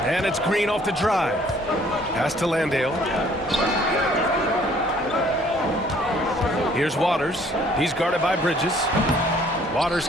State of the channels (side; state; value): both; normal; correlation 0.59